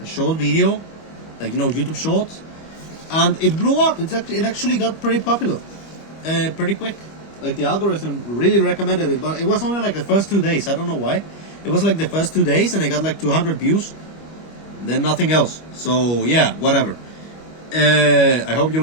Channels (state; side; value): late; right; 25 ms